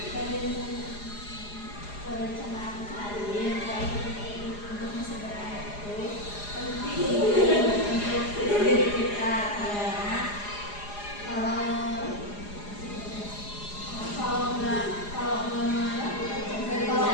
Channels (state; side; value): late; right; 4.9 ms